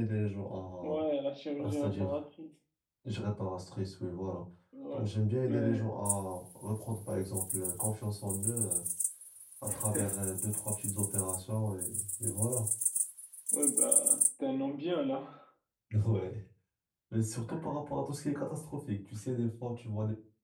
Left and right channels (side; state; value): both; identical; correlation 1.00